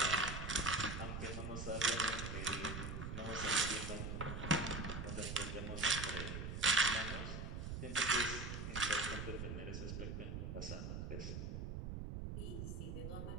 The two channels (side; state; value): right; noise; rumble, 5 dB below the sound